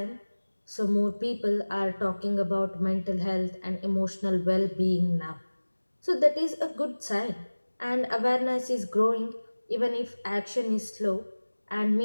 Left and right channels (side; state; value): both; inverted; correlation -1.00